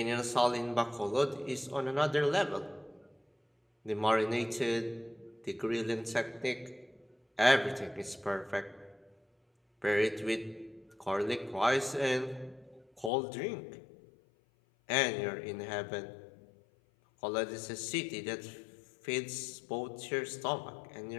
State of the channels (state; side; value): drops out; right; at 13.1 s